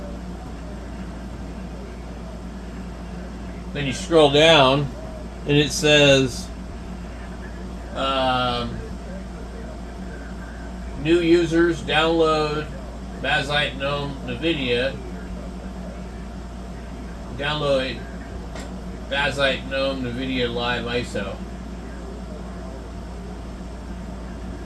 Then you scroll down, and it says new users download bazzite gnome NVIDIA. Download bazzite gnome NVIDIA Live ISO.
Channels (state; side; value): identical; both; correlation 1.00